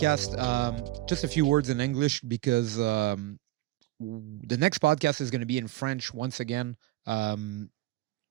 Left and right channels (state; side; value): quieter; left; 17.1 dB